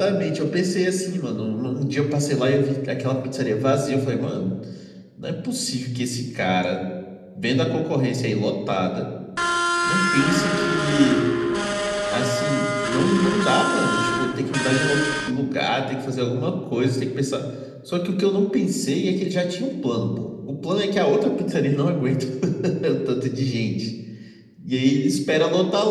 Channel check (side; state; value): both; identical; correlation 1.00